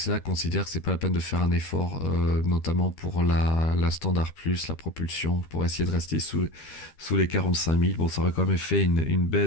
considère que c'est pas la peine de faire un effort, notamment pour la Standard Plus, la propulsion, pour essayer de rester sous les 45 000. Bon, ça aurait quand même fait une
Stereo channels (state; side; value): late; right; 13 ms